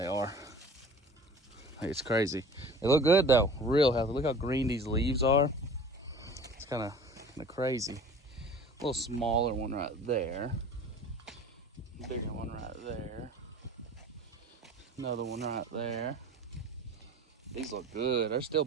are. Like, it's crazy. They look good though, real healthy. Look how green these leaves are. It's kind of crazy. A little smaller one right there. Bigger one right there. Another one right there. These look good. There's still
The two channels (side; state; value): both; normal; correlation 0.43